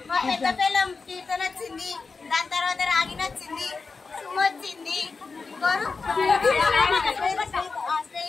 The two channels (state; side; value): quieter; right; 4.5 dB